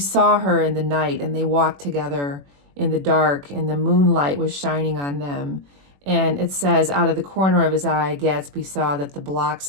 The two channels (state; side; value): late; left; 21 ms